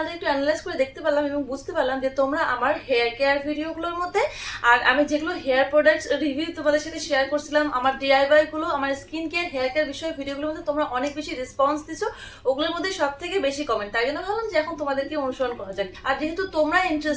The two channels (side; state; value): both; identical; correlation 1.00